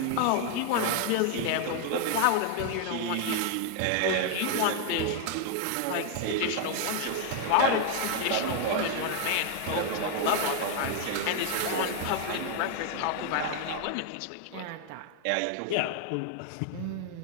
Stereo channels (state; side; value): different; both; correlation 0.00